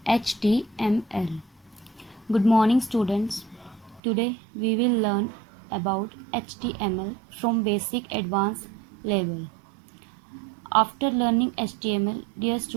HTML. Good morning, students. Today we will learn about HTML from basic advanced level. After learning HTML, dear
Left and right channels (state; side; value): drops out; left; at 4.0 s